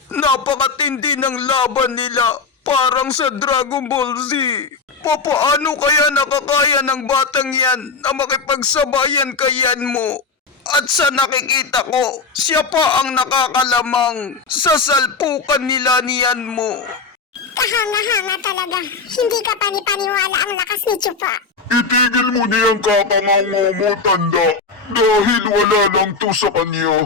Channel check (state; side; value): quieter; right; 4.5 dB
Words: Napakatindi ng laban nila. Parang sa Dragon Ball Z. Papaano kaya nakakaya ng batang yan na makipagsabayan kayan mo? At sa nakikita ko, siya pa ang nakakalamang sa salpukan nila niyan mo. Kahanga-hanga talaga. Hindi ka panipaniwala ang lakas ni Chupa. Itigil mo niyang kakangango mo, tanda. Dahil wala lang to sa